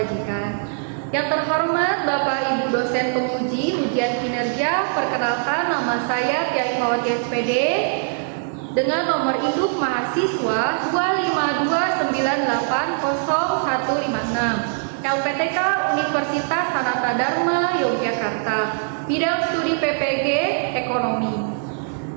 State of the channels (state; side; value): silent; left; 64 dB below the other